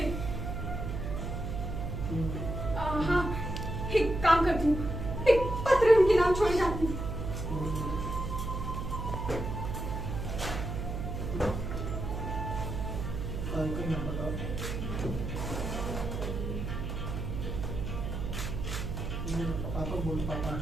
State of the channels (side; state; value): right; noise; hum, 4 dB below the sound